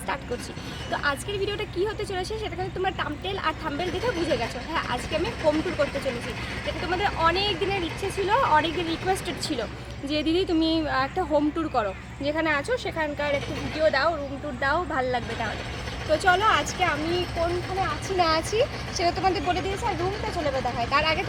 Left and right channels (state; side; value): identical; both; correlation 1.00